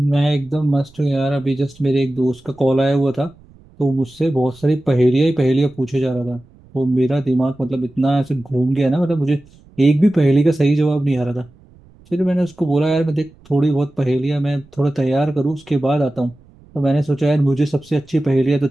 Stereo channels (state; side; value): noise; right; rumble, 27 dB below the sound